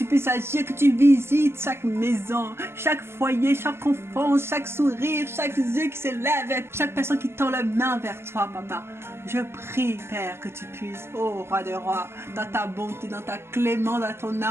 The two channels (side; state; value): left; late; 0.12 ms